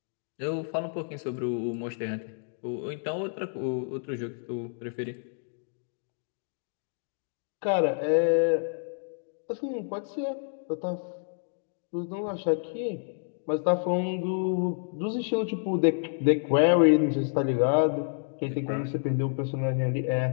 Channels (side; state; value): right; silent; digital silence